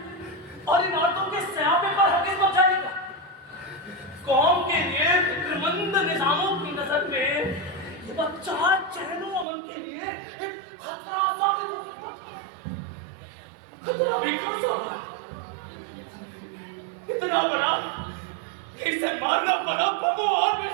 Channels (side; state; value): left; drops out; at 9.5 s